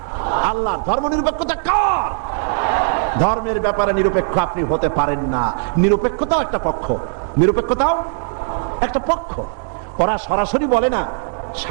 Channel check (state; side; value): silent; left; digital silence